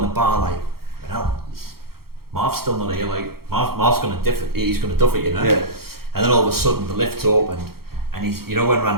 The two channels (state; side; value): late; left; 0.94 ms